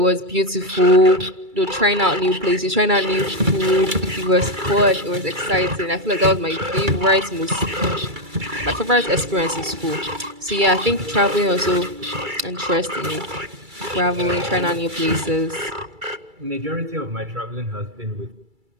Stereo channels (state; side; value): late; left; 2.3 ms